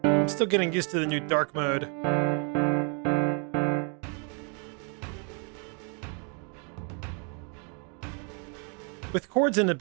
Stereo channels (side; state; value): left; quieter; 38.3 dB